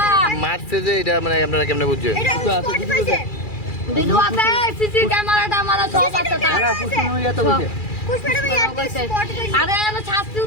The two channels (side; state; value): right; late; 2.4 ms